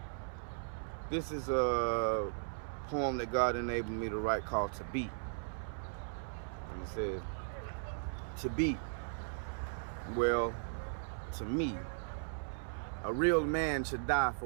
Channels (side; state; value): left; silent; 53 dB below the other